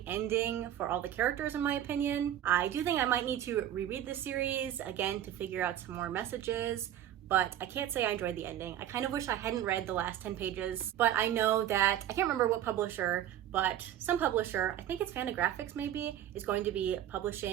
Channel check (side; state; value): left; quieter; 11.3 dB